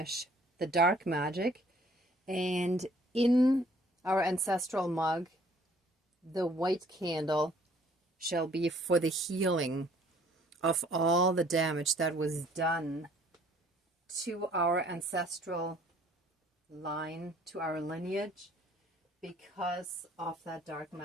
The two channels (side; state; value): both; normal; correlation 0.58